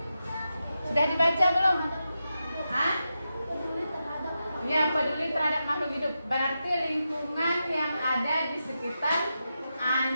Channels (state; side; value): inverted; both; correlation -0.88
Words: Sudah dibaca belum? Hah? Ya, peduli terhadap makhluk hidup. Berarti lingkungan yang ada di sekitar